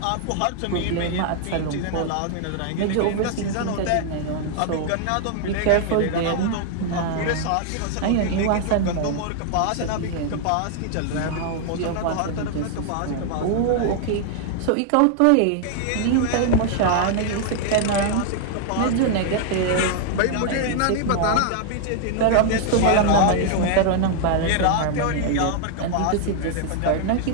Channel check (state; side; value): different; both; correlation 0.00